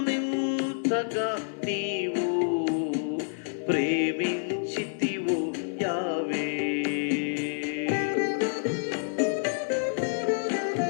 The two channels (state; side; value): silent; right; 56 dB below the other